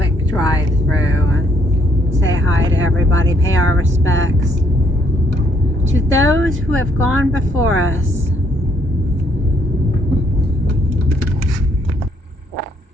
drive through and say hi to everybody, pay our respects to those who have gone before us.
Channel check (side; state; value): both; normal; correlation 0.69